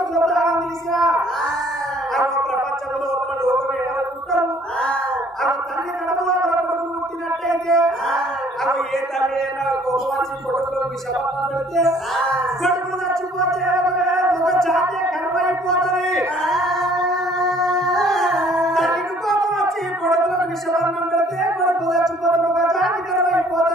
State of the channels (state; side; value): normal; both; correlation 0.58